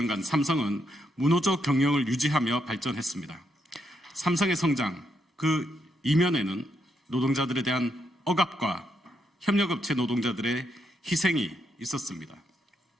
삼성은 무노조 경영을 유지하며 발전했습니다. 삼성의 성장, 그 이면에는 노동자들에 대한 억압과 협력업체 노동자들의 희생이 있었습니다.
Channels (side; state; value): both; normal; correlation 0.79